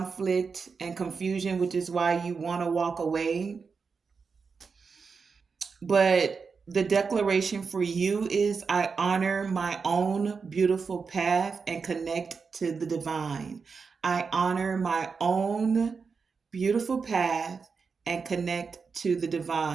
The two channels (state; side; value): quieter; left; 5.2 dB